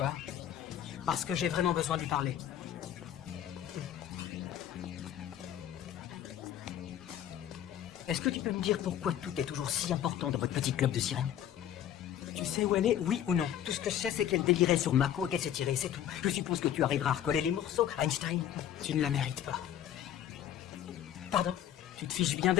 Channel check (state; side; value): quieter; right; 10.6 dB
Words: Parce que j'ai vraiment besoin de lui parler. Est-ce que tu peux me dire pourquoi tout est toujours si important dans votre petit club de sirènes? Tu sais où elle est, oui ou non? Tout ce que je sais, c'est qu'elle délirait sur Mako et qu'elle s'est tirée, c'est tout. Je suppose que tu arriveras à recoller les morceaux, Einstein. Tu ne la mérites pas. Pardon? Tu te fiches bien